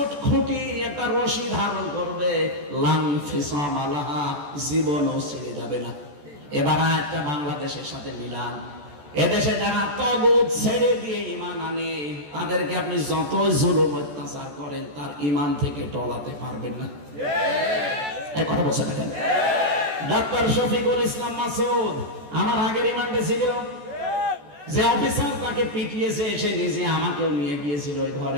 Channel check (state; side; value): late; left; 14 ms